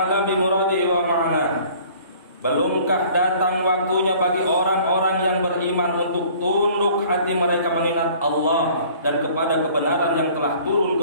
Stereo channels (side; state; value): both; inverted; correlation -0.52